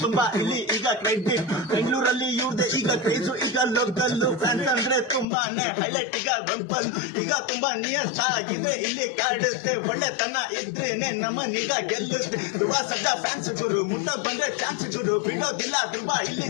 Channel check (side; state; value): right; drops out; at 5.2 s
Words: ತುಂಬಾ ಇಲ್ಲಿ ಈಗ ಕ್ರೆಡಿಟ್. ಬೆಂಗಳೂರಲ್ಲಿ ಇವ್ರದೆ ಈಗ ಕ್ರೇಜು, ಈಗ ಲೋಕಲ್ ಫ್ಯಾನ್ಸ್ ಅಂದ್ರೆ ತುಂಬಾನೇ ಹೈಲೈಟ್. ಈಗ ರಂಪಲ್ ಈಗ ತುಂಬಾ ನಿಯಸ್ ಆಗಿದೆ, ಇಲ್ಲಿ ಕಾಡುತ್ತೆ ಒಳ್ಳೆತನ ಇದ್ರೇನೆ ನಮ್ಮನೀಗ ಗೆಲ್ಲುತ್ತೆ. ಧ್ರುವ ಸಡ್ಡ ಫ್ಯಾನ್ಸ್ ಗುರು, ಮುಟ್ಟ ಬಂದ್ರೆ ಚಾನ್ಸ್ ಗುರು, ಬಿಡೋದಿಲ್ಲ ಧ್ರುವ ಇಲ್ಲಿ